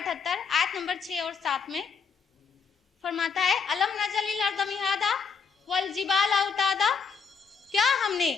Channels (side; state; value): right; quieter; 5.8 dB